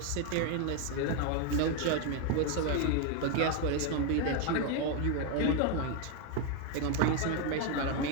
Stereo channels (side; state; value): both; different; correlation 0.01